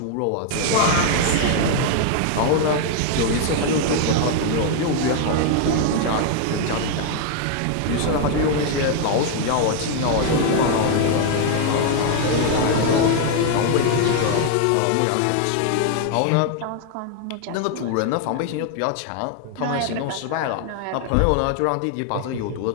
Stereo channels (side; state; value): both; different; correlation 0.00